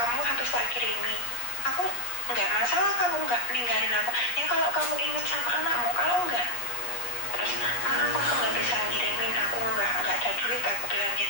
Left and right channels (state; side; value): late; right; 8.4 ms